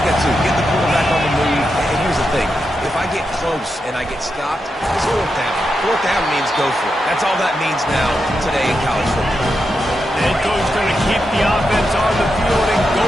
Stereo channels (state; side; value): normal; both; correlation 0.86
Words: that too. Get the quarterback on the move. And here's the thing. If I get close and I get stopped, it's 4th down. 4th down means go for it. That's all that means now today in college football. The head coach is going to keep the offense on the field and go